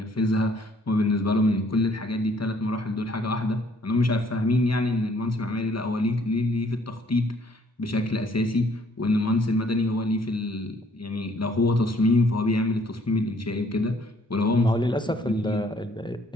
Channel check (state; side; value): normal; both; correlation 0.63